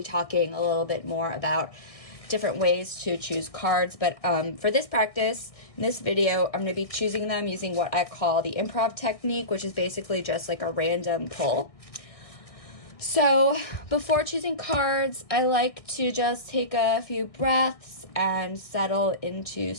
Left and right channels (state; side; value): late; right; 1.6 ms